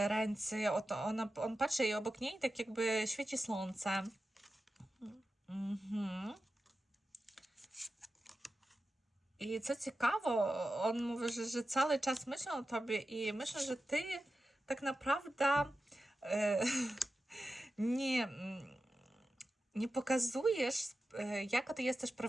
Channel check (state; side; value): normal; both; correlation 0.92